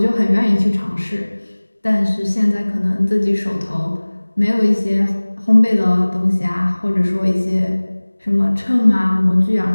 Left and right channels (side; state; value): both; inverted; correlation -1.00